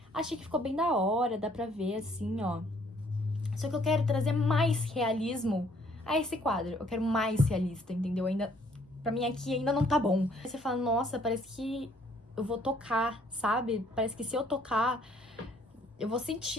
Achei que ficou bem da hora, dá pra ver assim, ó. Só que eu quero trazer mais realismo a esse quadro. Eu quero mais realista, entendeu? Ainda... Pra mim aqui ainda não tá bom. Aí você fala, nossa, parece que eu vou tocar, sabe? Parece que se eu tocar, eu vou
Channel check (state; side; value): normal; both; correlation 0.63